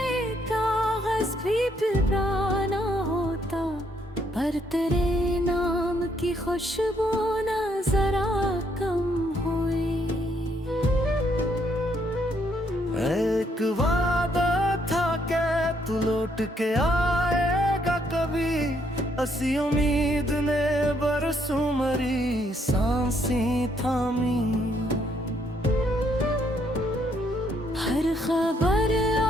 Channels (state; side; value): normal; both; correlation 0.71